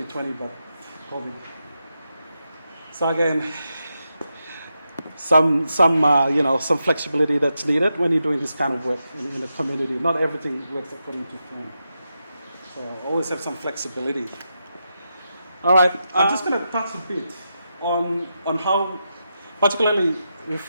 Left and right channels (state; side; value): inverted; both; correlation -0.86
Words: but COVID. So again, some flexibility that's needed when you're doing this kind of work in the community. Not everything works according to plan. So always have some flexibility. All right, I'm just going to touch a bit on how, particularly